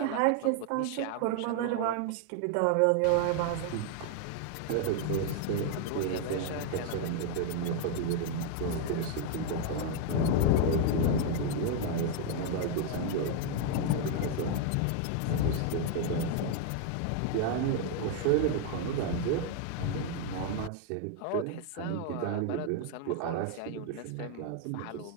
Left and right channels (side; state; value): both; different; correlation 0.00